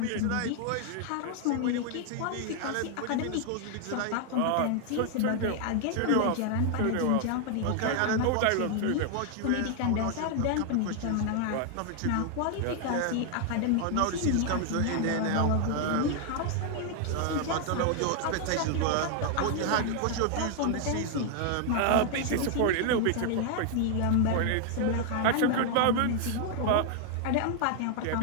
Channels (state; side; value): different; both; correlation 0.00